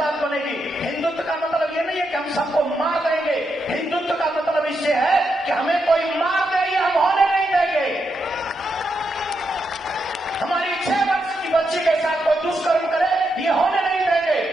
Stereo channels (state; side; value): normal; both; correlation 0.83